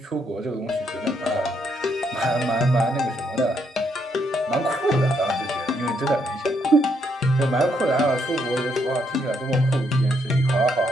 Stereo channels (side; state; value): both; normal; correlation 0.74